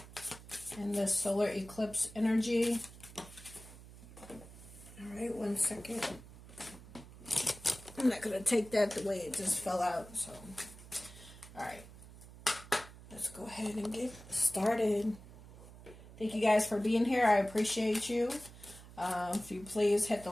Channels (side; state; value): right; noise; hum, 18 dB below the sound